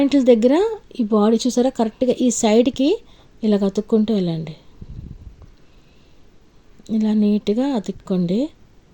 దగ్గర ఈ బాడీ చూసారా కరెక్ట్గా ఈ సైడ్కి ఇలా అతుక్కుంటూ వెళ్ళండి. ఇలా నీట్గా అతుక్కోండి,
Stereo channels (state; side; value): identical; both; correlation 1.00